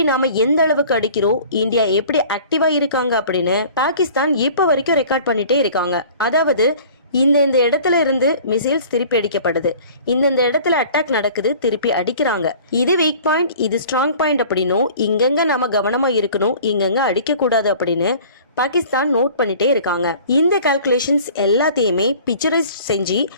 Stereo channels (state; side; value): inverted; both; correlation -0.47